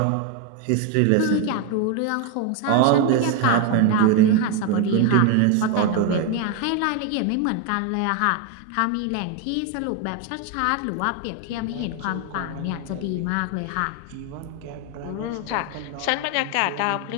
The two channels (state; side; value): different; both; correlation 0.01